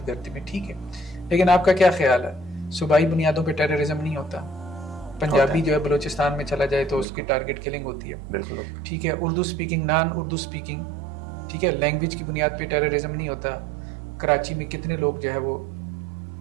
گردی میں. ٹھیک ہے. لیکن آپ کا کیا خیال ہے صوبائی بنیادوں پہ ٹیررزم نہیں ہوتا؟ پنجابی جو ہے بلوچستان میں چلا جائے تو اس کی ٹارگٹ کلنگ ہوتی ہے. بالکل. ٹھیک ہے. اردو سپیکنگ، نان اردو سپیکنگ، ٹھیک ہے، لینگویج کی بنیاد پہ ٹیررزم نہیں ہوتا. کراچی میں کتنے لوگ جو ہے وہ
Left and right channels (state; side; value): drops out; left; at 7.1 s